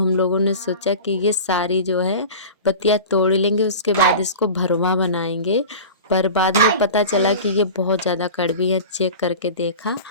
लोगों ने सोचा कि ये सारी जो है पत्तियाँ तोड़ लेंगे, उसके बाद इसको भरवा बनाएंगे। पर बाद में पता चला कि ये बहुत ज़्यादा कड़वी है, चेक करके देखा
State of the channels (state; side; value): inverted; both; correlation -0.34